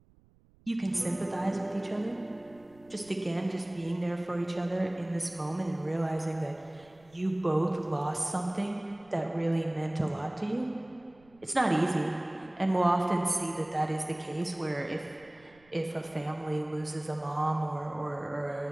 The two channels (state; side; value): noise; right; rumble, 29 dB below the sound